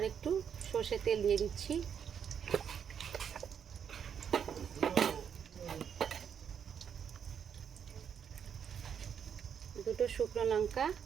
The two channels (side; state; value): left; quieter; 7.9 dB